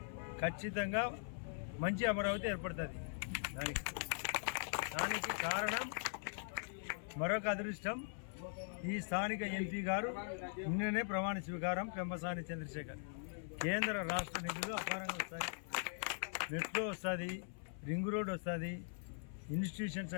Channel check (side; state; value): right; silent; 50 dB below the other